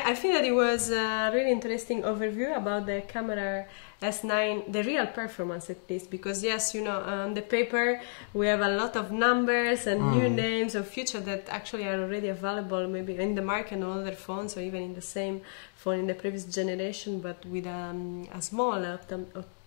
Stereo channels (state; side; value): silent; right; digital silence